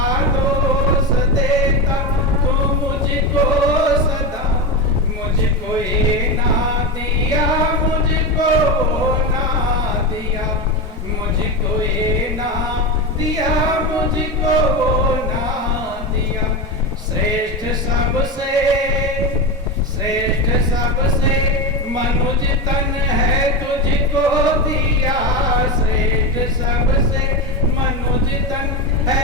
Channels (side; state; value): both; normal; correlation 0.17